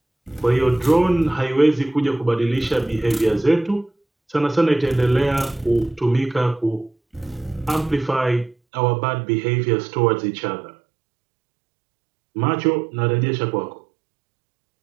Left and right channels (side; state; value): left; drops out; at 8.6 s